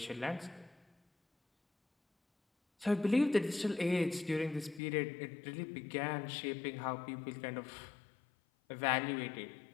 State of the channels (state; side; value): drops out; right; at 4.8 s